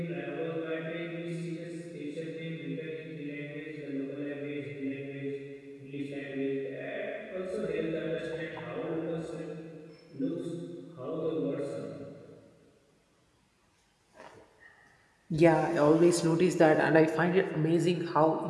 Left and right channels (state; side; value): identical; both; correlation 1.00